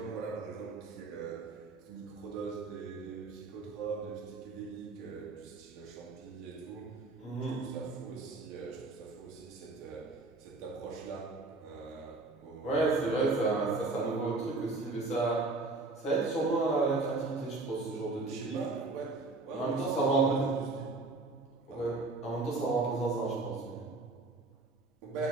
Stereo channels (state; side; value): quieter; left; 3.4 dB